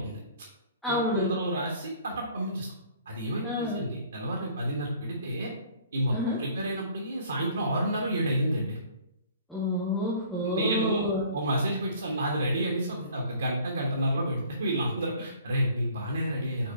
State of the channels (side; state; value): both; inverted; correlation -0.53